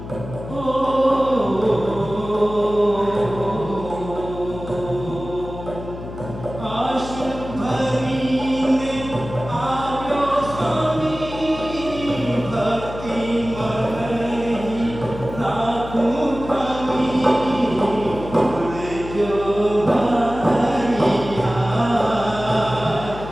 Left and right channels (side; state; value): left; noise; hum, 11 dB below the sound